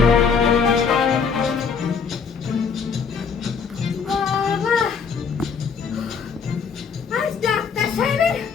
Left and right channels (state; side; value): quieter; right; 6.0 dB